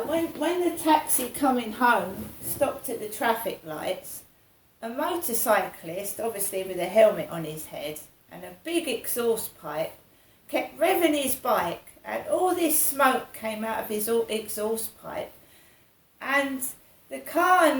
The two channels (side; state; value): both; identical; correlation 1.00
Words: When the taxi coming home stopped at the traffic lights, a motorcyclist, obviously with a helmet on his head and a big exhaust pipe, kept revving his bike and all this smoke came out of his exhaust pipe. And the car